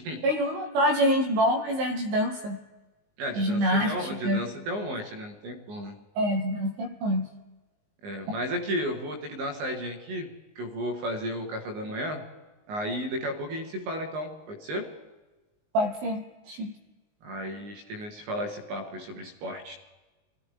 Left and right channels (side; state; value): left; late; 19 ms